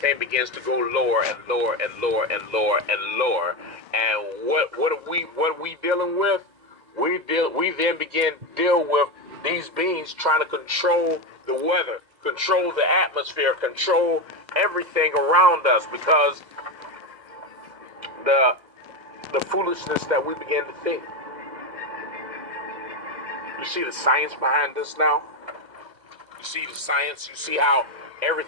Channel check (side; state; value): left; late; 2.0 ms